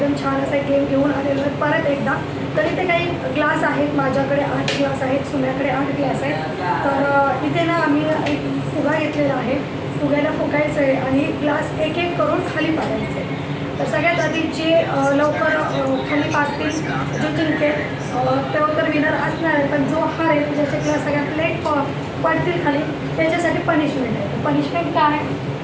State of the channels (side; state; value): both; identical; correlation 1.00